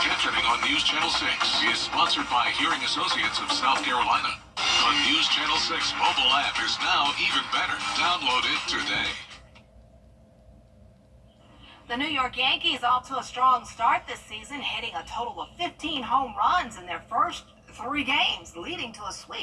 captioning on News Channel 6 is sponsored by Hearing Associates of South Carolina. The News Channel 6 mobile app is now even better. Download it today. The New York Yankees off to a strong start this season, hitting a total of 15 home runs in their first 3 games, leading to a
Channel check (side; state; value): both; identical; correlation 1.00